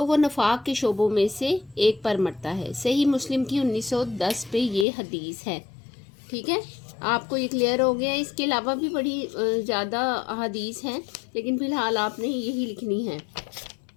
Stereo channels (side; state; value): right; drops out; at 4.9 s